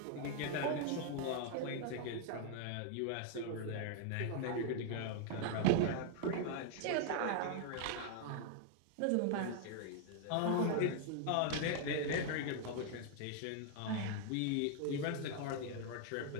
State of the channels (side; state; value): both; different; correlation 0.00